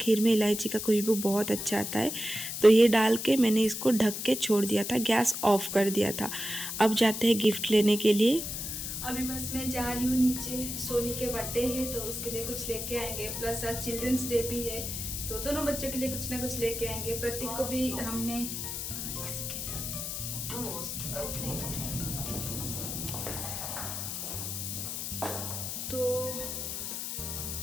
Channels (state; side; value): noise; left; hiss, 5 dB below the sound